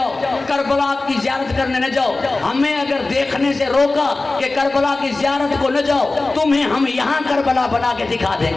करबला की ज़ियारत करने न जाओ, हमें अगर देखने से रोका कि करबला की ज़ियारत को न जाओ, तुम्हें हम यहाँ करबला बना के दिखा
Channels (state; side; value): quieter; right; 3.3 dB